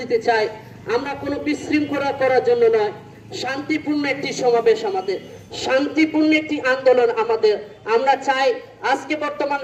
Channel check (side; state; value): both; identical; correlation 1.00